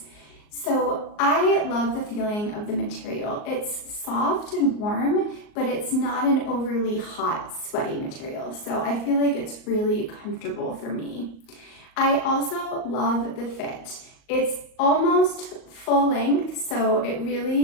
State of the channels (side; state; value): right; late; 38 ms